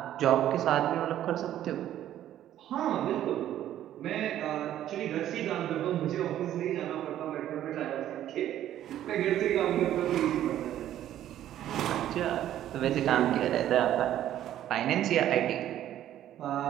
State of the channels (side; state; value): left; quieter; 12.0 dB